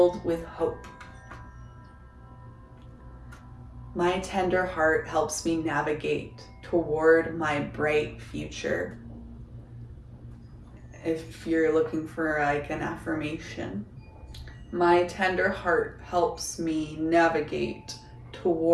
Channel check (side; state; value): both; identical; correlation 1.00